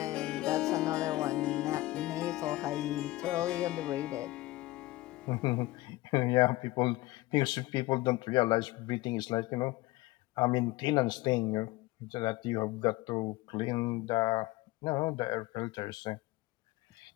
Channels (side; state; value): right; quieter; 19.1 dB